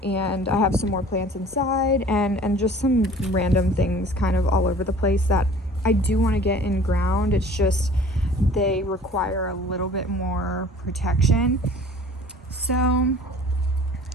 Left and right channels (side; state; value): both; normal; correlation 0.47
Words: and I have some more plants inside, and just some random things kind of all over the place that I do want to get in ground. It's just they require a little bit more protection. So